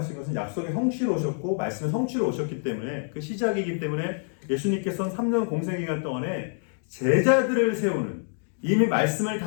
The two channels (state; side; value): silent; right; 56 dB below the other